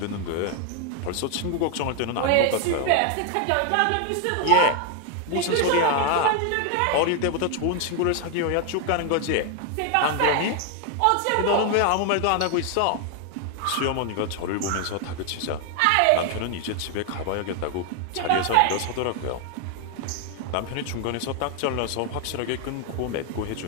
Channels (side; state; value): both; different; correlation 0.00